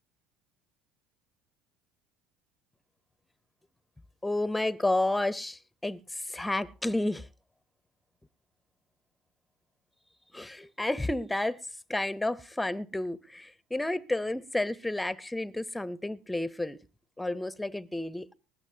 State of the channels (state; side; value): normal; both; correlation 0.98